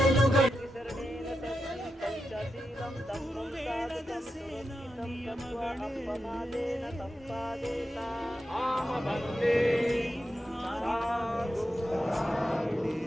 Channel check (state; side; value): normal; both; correlation 0.89